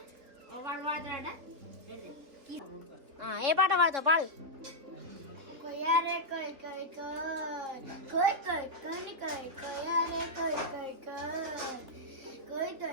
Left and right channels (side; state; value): left; late; 3.7 ms